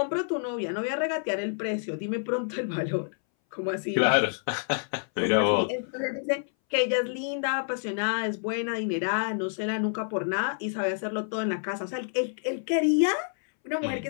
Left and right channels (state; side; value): silent; right; 59 dB below the other